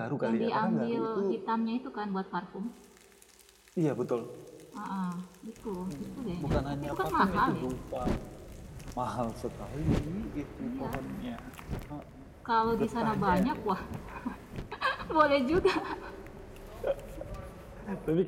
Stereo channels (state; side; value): identical; both; correlation 1.00